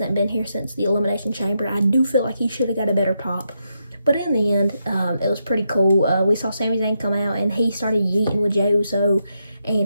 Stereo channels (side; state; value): both; inverted; correlation -0.82